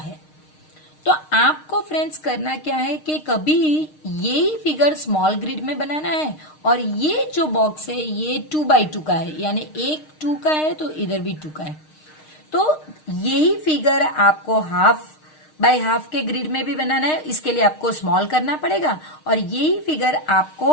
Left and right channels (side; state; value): right; late; 6.5 ms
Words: तो आपको फ्रेंड्स करना क्या है कि कभी यही फिगर स्मॉल ग्रिड में बनाना है और ये जो बॉक्स है ये 2x2 का है, यानी एक 2 का है तो इधर भी 2 का है। तो यही फिगर आपको हाफ बाय हाफ के ग्रिड में भी बनाना है, इसके लिए आपको स्मॉल करना पड़ेगा। और यही फिगर